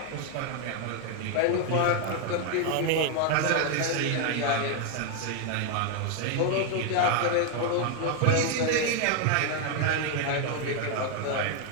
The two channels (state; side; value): different; both; correlation 0.01